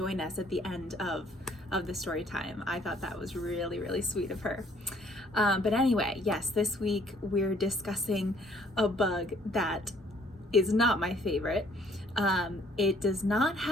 us at the end of the story time. I thought that was really, really sweet of her. But anyway, yes, this week we're discussing a bug that is not my favorite. It does not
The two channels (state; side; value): normal; both; correlation 0.61